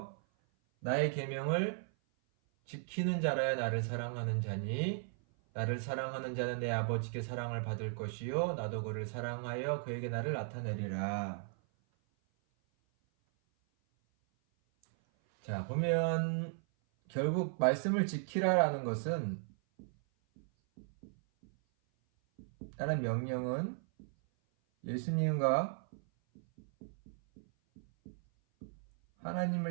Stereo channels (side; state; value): left; silent; 54 dB below the other